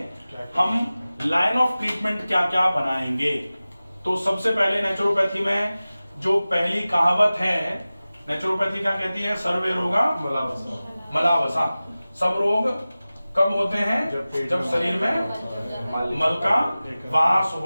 हम लाइन ऑफ ट्रीटमेंट क्या क्या बनाएंगे। तो सबसे पहले नेचुरोपैथी में जो पहली कहावत है, नेचुरोपैथी क्या कहती है, सर्वे रोगा मलावसा। सब रोग कब होते हैं, जब शरीर में मल का वास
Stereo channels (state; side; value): inverted; both; correlation -0.97